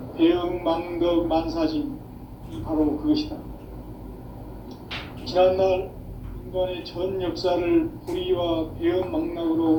배음 망덕 만사진, 이 바로 그것이다. 지난날 인간의 전 역사를 불의와 배음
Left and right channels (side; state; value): both; identical; correlation 1.00